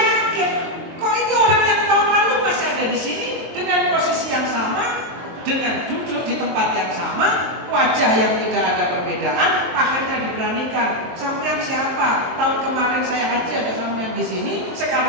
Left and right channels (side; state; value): left; late; 23 ms